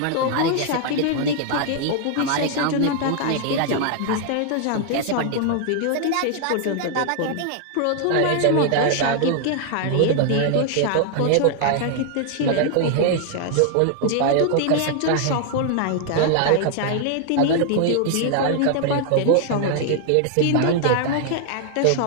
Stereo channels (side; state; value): both; different; correlation 0.00